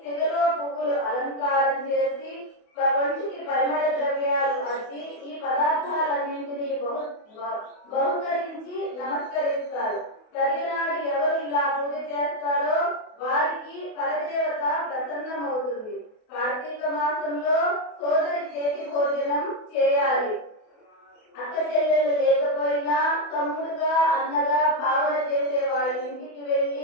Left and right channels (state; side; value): late; right; 28 ms